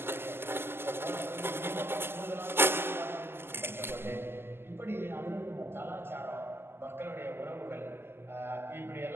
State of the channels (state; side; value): late; left; 0.11 ms